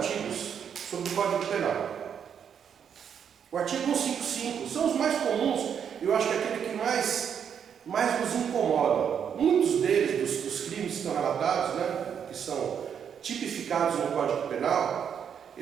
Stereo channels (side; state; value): left; quieter; 7.9 dB